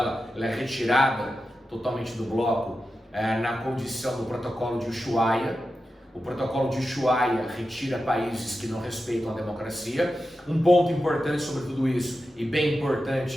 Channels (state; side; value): normal; both; correlation 0.91